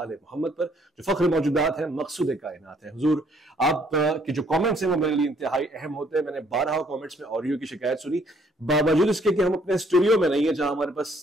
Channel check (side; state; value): both; normal; correlation 0.65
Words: मोहम्मद पर जो फख्र मौजूदात हैं, मकसूद कायनात है। हुजूर आप के जो कमेंट्स हैं वो मेरे लिए इंतहाई अहम होते हैं। मैंने 12 कमेंट्स में ऑडियो की शिकायत सुनी, बावजूद इसके कि हम अपने स्टूडियो में नहीं है जहां हमारे पास